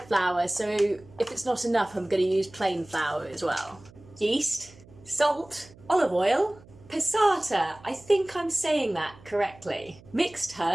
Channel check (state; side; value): noise; right; hum, 23 dB below the sound